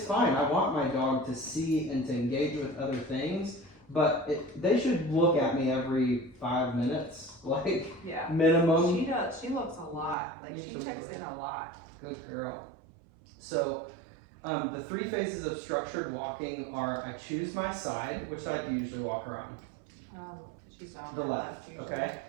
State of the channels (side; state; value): left; drops out; at 10.2 s